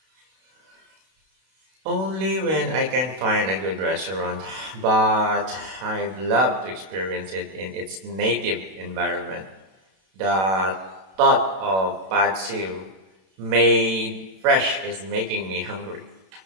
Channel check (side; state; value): left; late; 32 ms